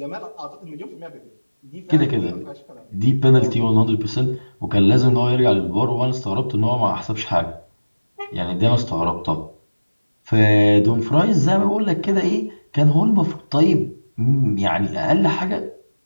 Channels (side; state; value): both; inverted; correlation -1.00